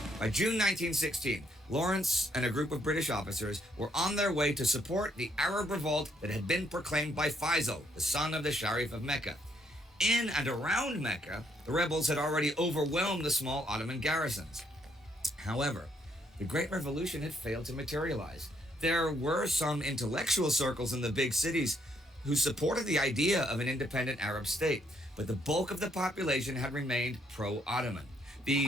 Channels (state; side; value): normal; both; correlation 0.72